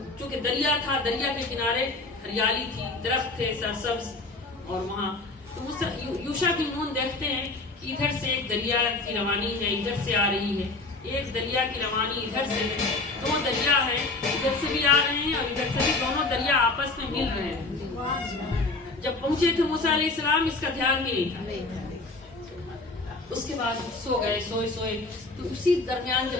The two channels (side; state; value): right; quieter; 3.3 dB